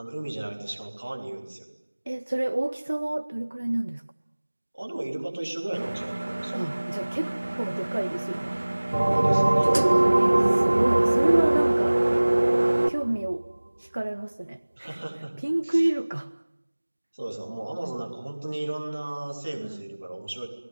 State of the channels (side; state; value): both; inverted; correlation -1.00